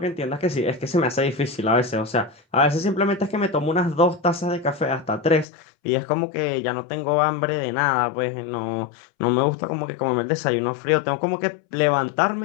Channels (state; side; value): drops out; right; at 5.5 s